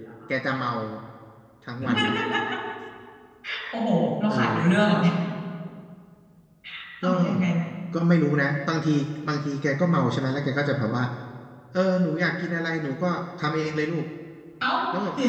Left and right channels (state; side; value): identical; both; correlation 1.00